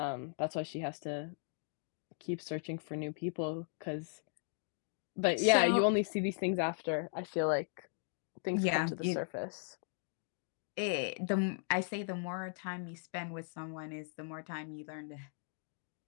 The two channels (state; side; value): silent; right; digital silence